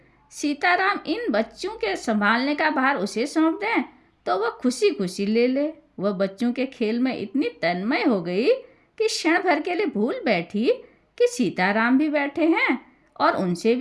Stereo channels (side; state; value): both; identical; correlation 1.00